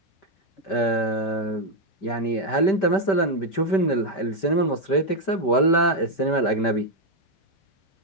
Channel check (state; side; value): late; right; 5.1 ms